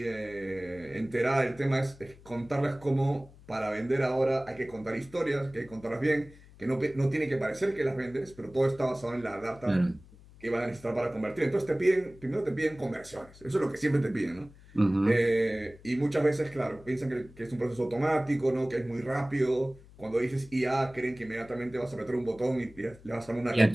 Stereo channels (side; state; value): left; noise; hum, 22 dB below the sound